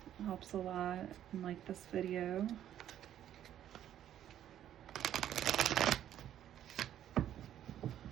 It helps a lot, and like this video.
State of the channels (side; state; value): left; quieter; 11.1 dB